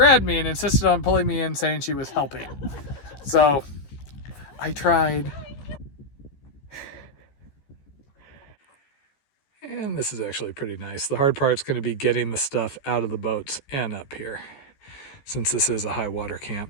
me and insisted on pulling me in, saying she was helping. So I tried. And this is actually pretty nice. The hard part's going to be getting the stuff out of the boats and up here, since this is a high water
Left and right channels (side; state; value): right; late; 14 ms